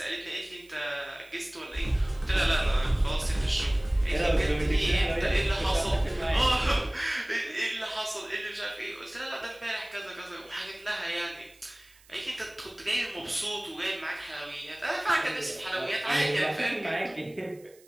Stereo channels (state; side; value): noise; right; hiss, 27 dB below the sound